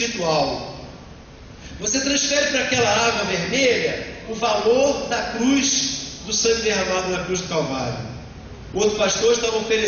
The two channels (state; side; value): identical; both; correlation 1.00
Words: Você transfere para aquela água vermelha o valor da cruz, do sangue derramado na cruz do Calvário. O outro pastor estava